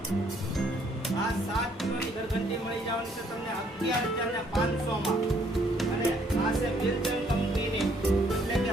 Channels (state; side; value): normal; both; correlation 0.66